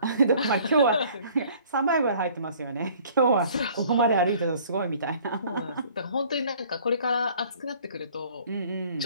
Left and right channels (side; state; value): both; inverted; correlation -0.54